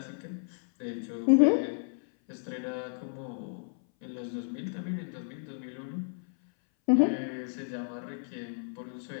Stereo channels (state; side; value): silent; right; 56 dB below the other